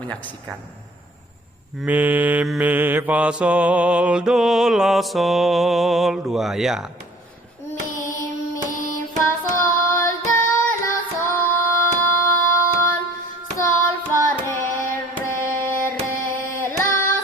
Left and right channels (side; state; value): both; normal; correlation 0.52